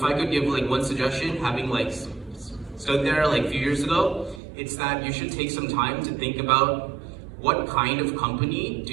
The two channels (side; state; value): left; drops out; at 4.4 s